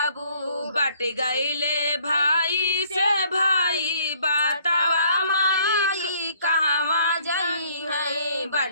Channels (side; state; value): both; inverted; correlation -0.61